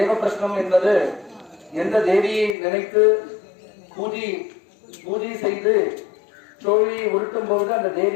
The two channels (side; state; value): right; drops out; at 2.6 s